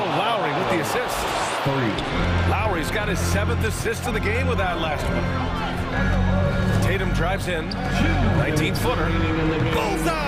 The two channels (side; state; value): both; identical; correlation 1.00